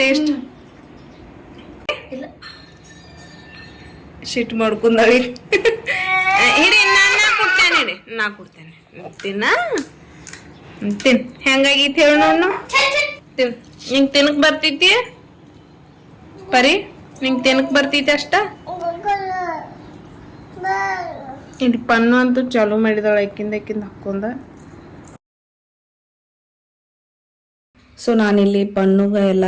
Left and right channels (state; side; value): identical; both; correlation 1.00